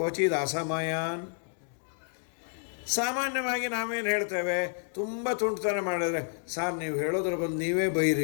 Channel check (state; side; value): silent; right; 58 dB below the other